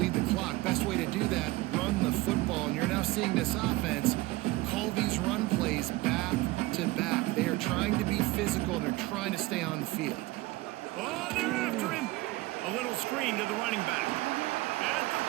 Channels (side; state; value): left; quieter; 19.9 dB